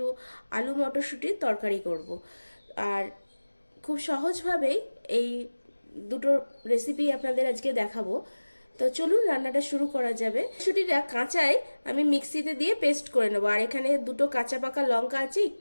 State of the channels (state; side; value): inverted; both; correlation -1.00